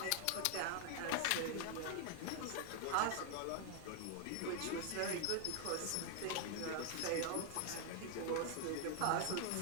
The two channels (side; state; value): both; different; correlation 0.00